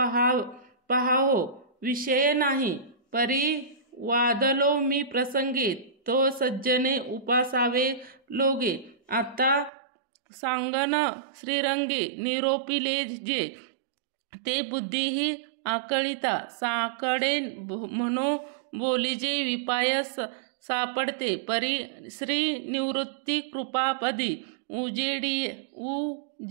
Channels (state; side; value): drops out; left; at 9.7 s